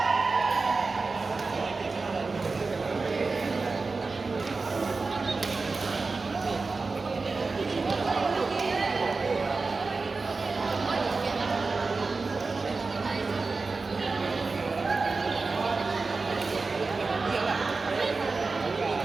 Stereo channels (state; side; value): quieter; left; 4.0 dB